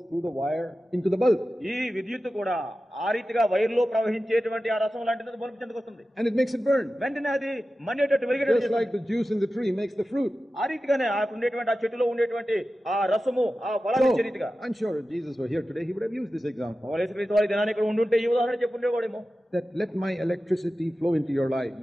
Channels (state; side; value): normal; both; correlation 0.94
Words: through the wire into the bulb. ఈ విద్యుత్ కూడా ఆ రీతిగా వైర్లో ప్రవహించేటువంటి ఆ రసం లాంటిది బల్బు చెందుకు వస్తుంది. And it makes it burn. వెంటనే అది మండేటట్టు వెలిగేటట్టు Just like the juice in the tree makes the fruit. ఆ రీతిగానే ఆ ఉండేటువంటి ఆ చెట్టులో ఉండేటువంటి ఆ రసము ఆ ఫలాన్ని ఇచ్చే రీతిగా. I'm sure if Jesus were here today, he would have used this example. యేసుక్రీస్తు వారి దినాన్ని ఇక్కడ ఉండుంటే ఈ ఉదాహరణ చెప్పుండేవాడేమో. That let my electricity flow into your life.